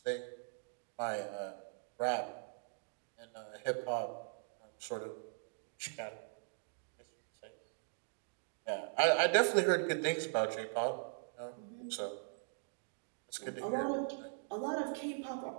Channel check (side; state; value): left; silent; digital silence